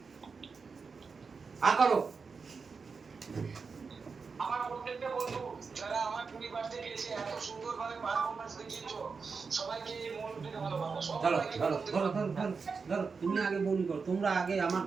করো আমার প্রত্যেকটা বন্ধু যারা আমার 20 বার্থডে গিয়েছে এত সুন্দরভাবে পারফরম্যান্স দেখিয়েছো সবাইকে মন থেকে ভালোবাসা সবাইকে ধরো তুমি আগে বলি করো তোমরা আগে আমার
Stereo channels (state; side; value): quieter; left; 5.0 dB